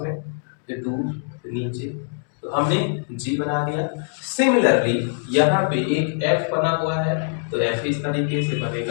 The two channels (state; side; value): silent; right; 63 dB below the other